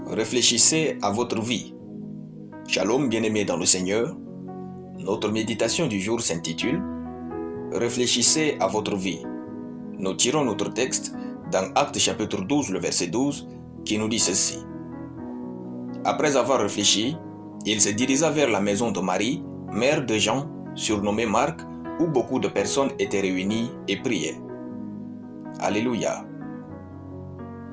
Réfléchissez à votre vie. Shalom bien-aimés dans le Seigneur. Notre méditation du jour s'intitule Réfléchissez à votre vie. Nous tirons notre texte dans Actes chapitre 12, le verset 12, qui nous dit ceci. Après avoir réfléchi, il se dirigea vers la maison de Marie, mère de Jean, surnommée Marc, où beaucoup de personnes étaient réunies et priaient. Alléluia.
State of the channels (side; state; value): both; identical; correlation 1.00